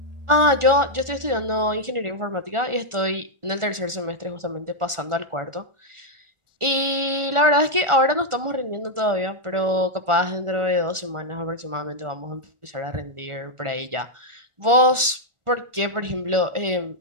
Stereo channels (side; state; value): left; late; 1.4 ms